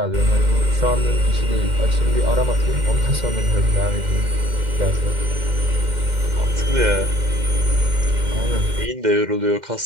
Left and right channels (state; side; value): late; left; 2.1 ms